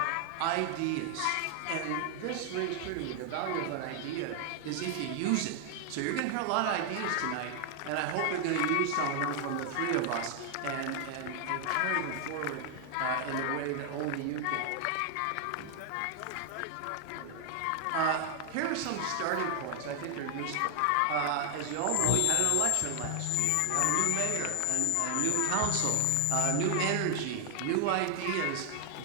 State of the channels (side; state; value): both; different; correlation 0.00